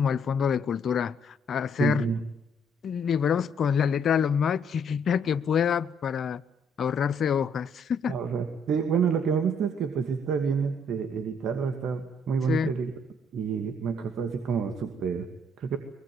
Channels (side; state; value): both; normal; correlation 0.67